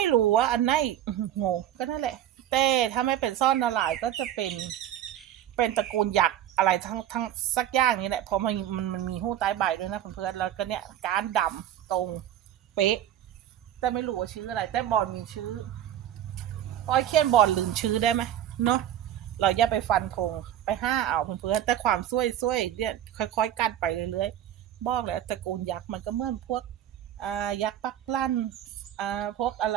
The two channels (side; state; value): left; quieter; 11.4 dB